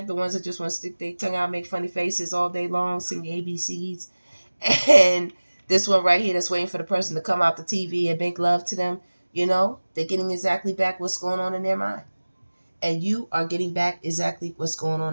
the ones that just want to stick their tongue out, make funny faces all day long, sing ABCs, and this one right here that's waiting for the person to come out the TV and make love to them, they're getting exactly back what's going on in their mind. And you are getting back exactly what's going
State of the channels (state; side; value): inverted; both; correlation -1.00